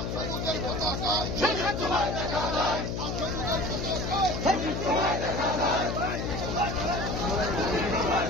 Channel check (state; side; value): noise; left; hum, 3 dB below the sound